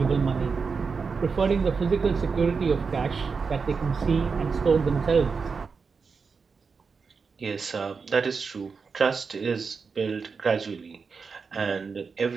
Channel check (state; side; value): quieter; left; 5.1 dB